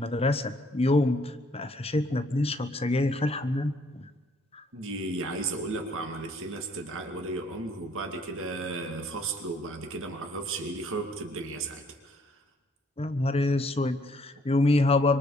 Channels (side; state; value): both; normal; correlation 0.64